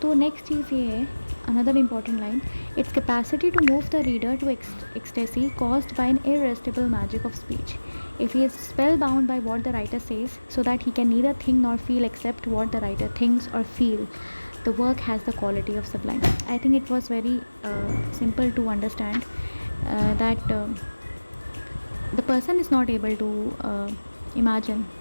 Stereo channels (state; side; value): inverted; both; correlation -1.00